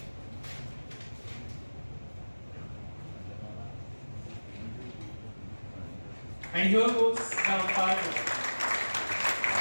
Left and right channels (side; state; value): both; inverted; correlation -1.00